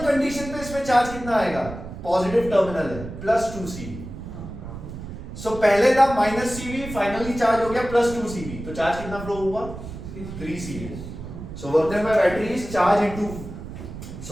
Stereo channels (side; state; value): right; noise; rumble, 11 dB below the sound